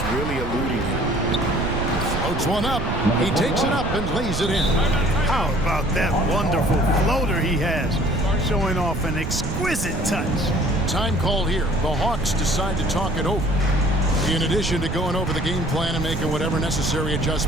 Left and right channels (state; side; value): noise; right; rumble, 4 dB below the sound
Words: really eluding him. Floats one up. He takes it up and lays it in. How about that wonderful floater he has, showing off an exquisite touch. Time called here. The Hawks decide to talk it over. In addition to going over the game plan and making whatever necessary